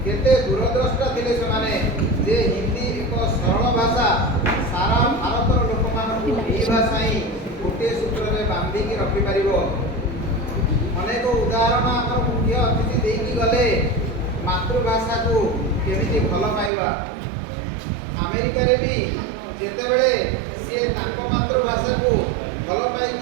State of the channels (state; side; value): drops out; left; at 16.7 s